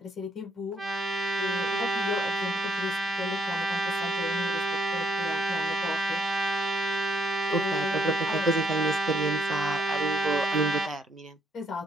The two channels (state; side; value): normal; both; correlation 0.72